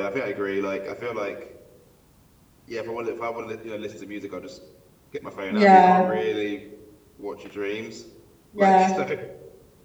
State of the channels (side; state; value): both; identical; correlation 1.00